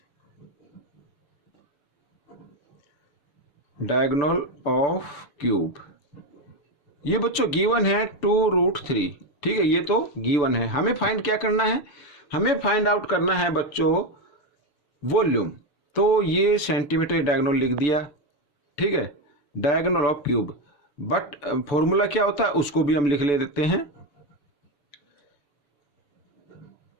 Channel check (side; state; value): right; late; 6.9 ms